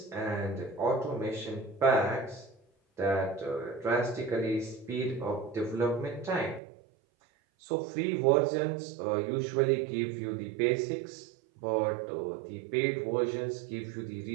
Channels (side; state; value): left; drops out; at 6.6 s